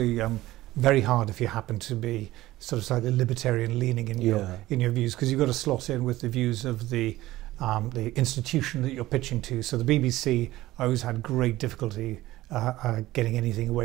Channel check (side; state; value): left; quieter; 16.6 dB